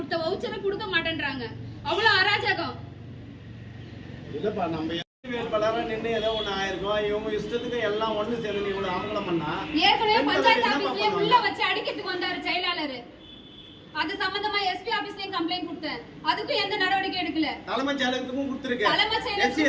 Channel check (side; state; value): both; identical; correlation 1.00